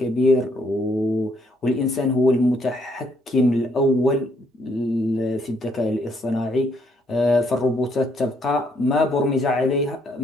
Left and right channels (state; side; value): normal; both; correlation 0.70